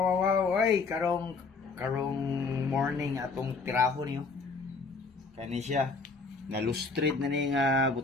ay, karong morning atong tiraho niyo. Kani siya. Nalustrid na ni nga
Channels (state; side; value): quieter; right; 4.3 dB